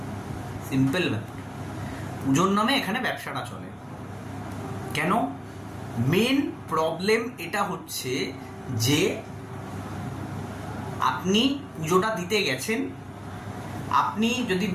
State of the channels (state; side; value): identical; both; correlation 1.00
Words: সিম্পল ব্যাপার, পুজোর নামে এখানে ব্যবসাটা চলে। কেন? মেন প্রবলেম এটা হচ্ছে যে আপনি পুজোটা দিতে গেছেন, আপনি যদি